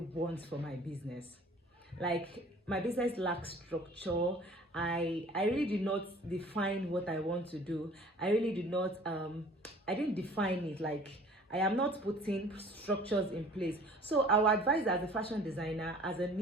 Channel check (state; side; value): normal; both; correlation 0.50